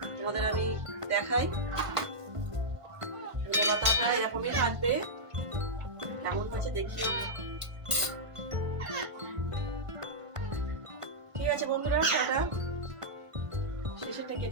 তোমাদের আমি দেখাই। ধনে পাতাটা এরকমই থাকবে, কেমন হয়েছে দেখিও। ঠিক আছে বন্ধুরা, টাটা।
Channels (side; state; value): left; late; 1.5 ms